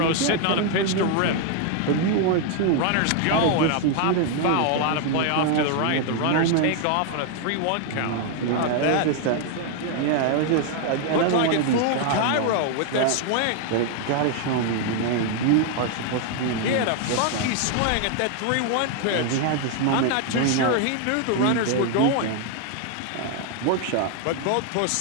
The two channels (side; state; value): both; different; correlation 0.00